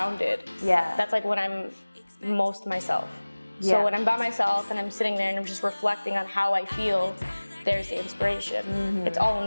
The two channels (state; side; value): inverted; both; correlation -1.00